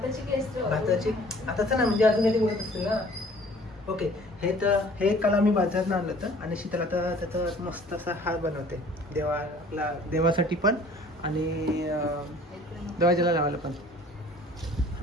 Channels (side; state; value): both; normal; correlation 0.52